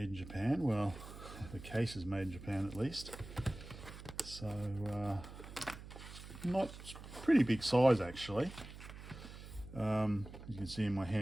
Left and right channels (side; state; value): right; noise; hum, 13 dB below the sound